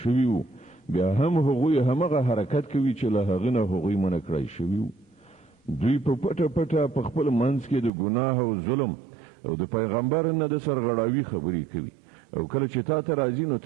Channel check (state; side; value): drops out; left; at 7.9 s